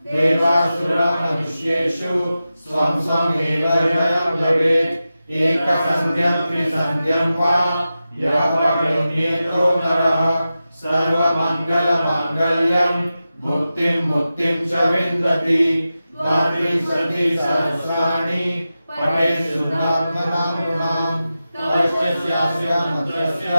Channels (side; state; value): both; inverted; correlation -0.93